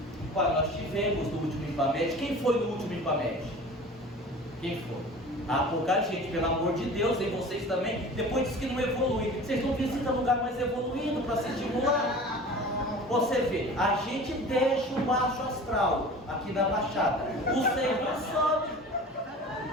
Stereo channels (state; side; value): normal; both; correlation 0.40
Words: Olha, nós tivemos no último IPAMED. Quem foi no último IPAMED? Quem foi? Ah, pouca gente, pelo amor de Deus, e vocês também. Depois diz que não evolui. Vocês não visitam lugar mais evoluído para se estimular. Você vê, a gente deixa o baixo astral aqui na Baixada. O Senhor sobe.